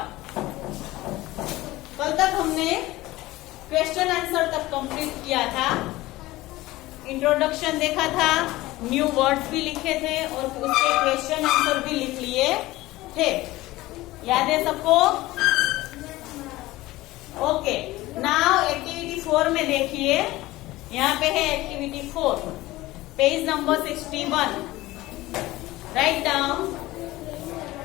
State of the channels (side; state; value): right; quieter; 18.2 dB